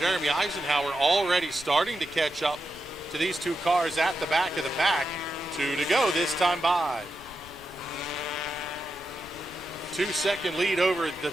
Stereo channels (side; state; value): left; noise; rumble, 21 dB below the sound